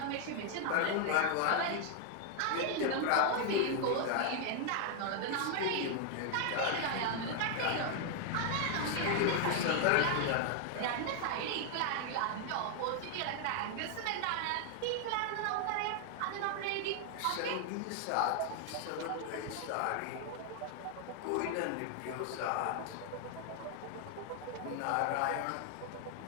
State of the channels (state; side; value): different; both; correlation 0.00